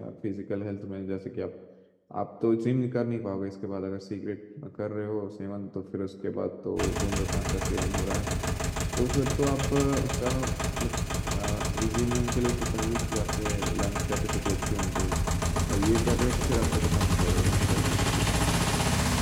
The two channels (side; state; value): both; identical; correlation 1.00